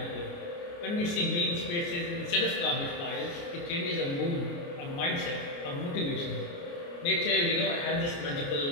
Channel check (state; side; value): late; right; 29 ms